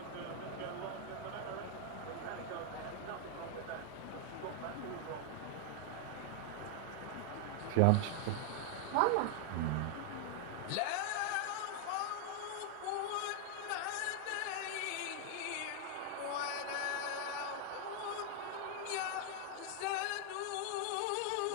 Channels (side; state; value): both; different; correlation 0.00